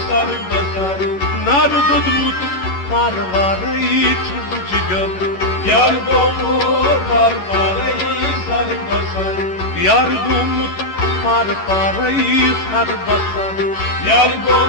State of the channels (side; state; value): right; late; 11 ms